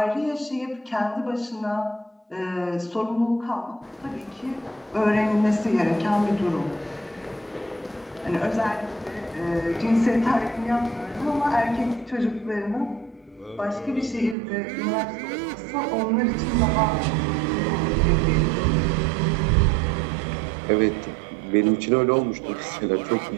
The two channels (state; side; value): drops out; left; at 14.4 s